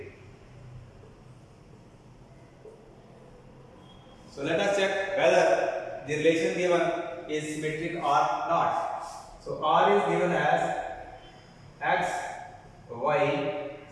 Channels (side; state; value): both; identical; correlation 1.00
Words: So let us check whether the relation given is symmetric or not. So R is given as X, Y,